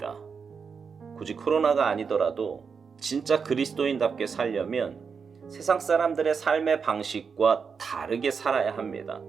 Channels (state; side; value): quieter; left; 5.8 dB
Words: 굳이 코로나가 아니더라도 진짜 그리스도인답게 살려면 세상 사람들의 삶의 방식과 다르게 살아야 합니다.